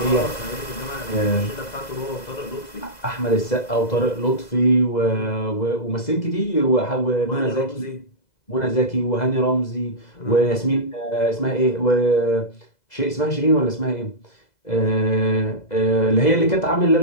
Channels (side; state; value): right; late; 2.0 ms